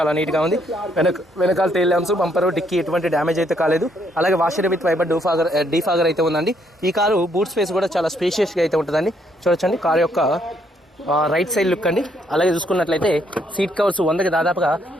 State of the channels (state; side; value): normal; both; correlation 0.71